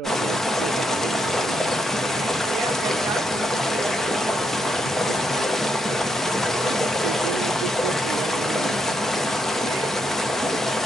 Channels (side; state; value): both; normal; correlation 0.79